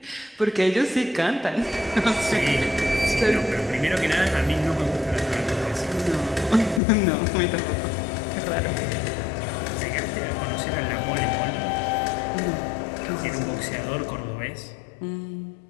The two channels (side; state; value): right; drops out; at 6.8 s